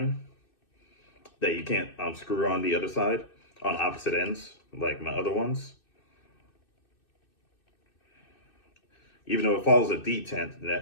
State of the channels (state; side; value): late; right; 2.6 ms